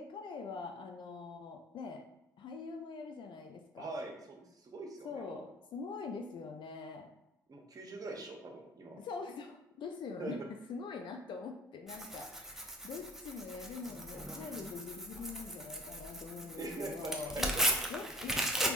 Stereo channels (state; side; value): normal; both; correlation 0.41